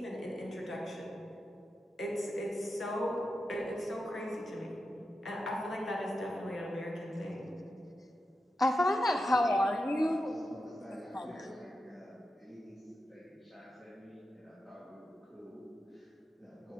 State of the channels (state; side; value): normal; both; correlation 0.89